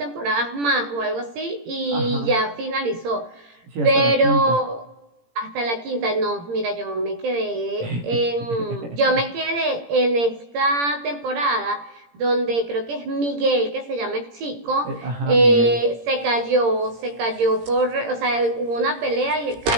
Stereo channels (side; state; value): left; late; 17 ms